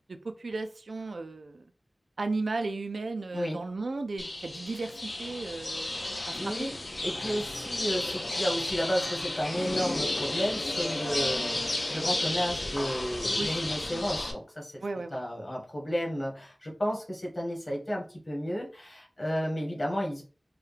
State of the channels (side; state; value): both; normal; correlation 0.97